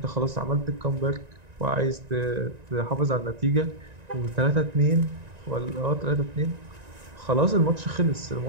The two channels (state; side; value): late; left; 1.9 ms